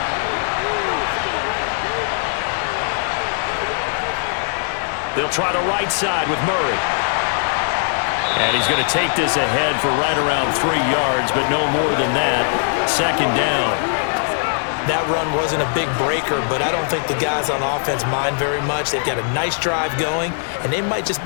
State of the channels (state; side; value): silent; right; digital silence